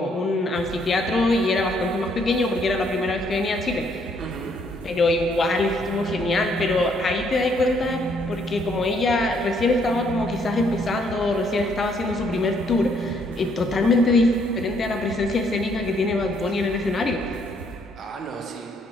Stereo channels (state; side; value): normal; both; correlation 0.69